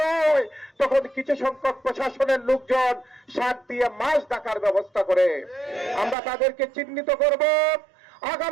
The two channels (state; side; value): drops out; left; at 6.2 s